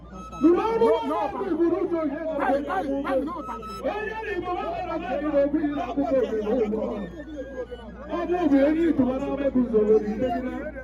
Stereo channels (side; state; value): both; identical; correlation 1.00